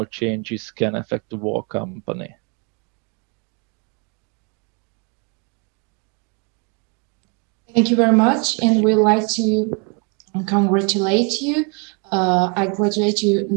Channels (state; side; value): quieter; left; 34.4 dB